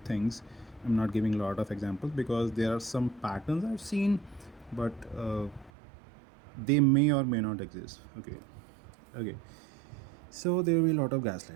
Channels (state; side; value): drops out; left; at 5.7 s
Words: things. I'm not giving a lot of examples because there are some patterns I've seen, but they may or may not exist. Okay, so there will be a lot of